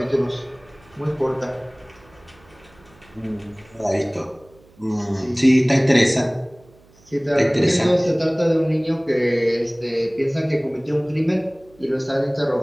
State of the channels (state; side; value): noise; right; hum, 28 dB below the sound